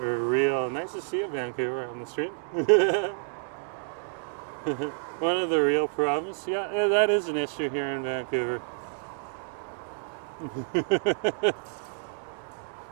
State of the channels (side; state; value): left; silent; digital silence